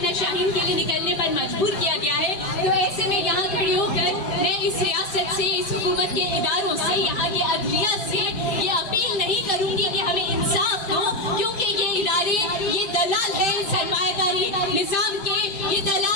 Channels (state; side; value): late; right; 5.1 ms